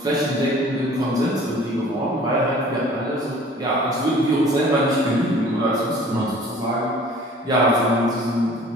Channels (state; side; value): normal; both; correlation 0.49